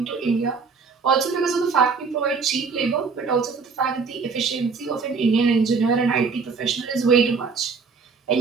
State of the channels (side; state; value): left; quieter; 5.0 dB